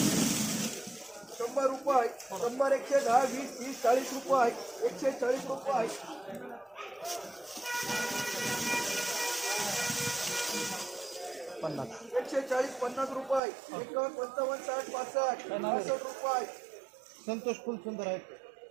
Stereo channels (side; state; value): left; drops out; at 13.4 s